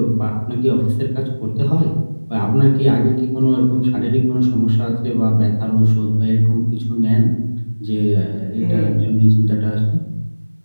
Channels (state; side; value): inverted; both; correlation -1.00